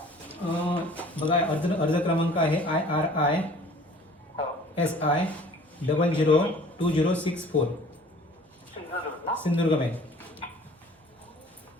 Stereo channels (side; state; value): both; normal; correlation 0.50